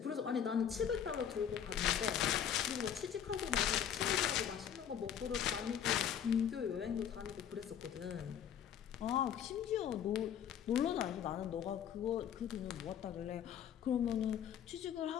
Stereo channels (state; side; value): quieter; right; 9.0 dB